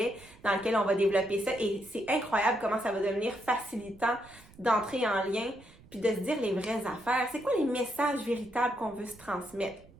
dans lequel on va développer ça. Et c'est incroyable comment ça va devenir facilitant d'entrer en lien puis de se dire les vraies affaires. C'est quoi les messages véritables qu'on veut se transmettre?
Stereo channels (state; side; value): noise; right; rumble, 24 dB below the sound